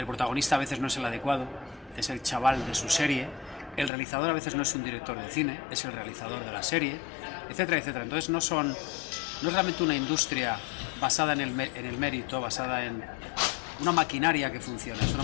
protagonista a veces no es el adecuado, es el chaval de su serie, el realizador a veces no es un director de cine, es el realizador de la serie, etcétera, etcétera. Entonces no es realmente una industria basada en el mérito, basada en una maquinaria que funciona, es una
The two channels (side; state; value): right; drops out; at 3.9 s